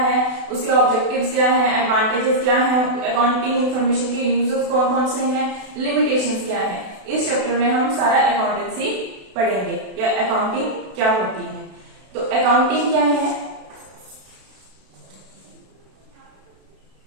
उसके ऑब्जेक्टिव्स क्या हैं, एडवांटेजेस क्या हैं, अकाउंटिंग इंफॉर्मेशन के यूजर्स कौन कौन से हैं, लिमिटेशंस क्या हैं, इस चैप्टर में हम सारा अकाउंटेंसी पढ़ेंगे या अकाउंटिंग क्या होती है। तो अकाउंटिंग क्या है,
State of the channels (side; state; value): left; late; 32 ms